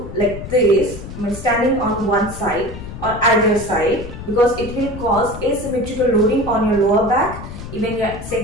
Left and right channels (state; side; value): noise; left; rumble, 11 dB below the sound